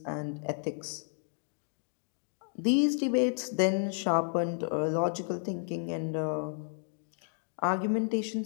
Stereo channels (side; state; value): right; silent; digital silence